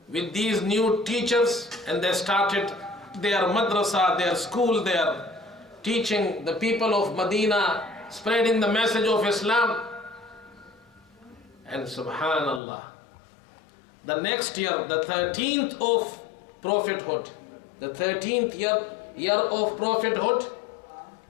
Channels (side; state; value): right; drops out; at 12.6 s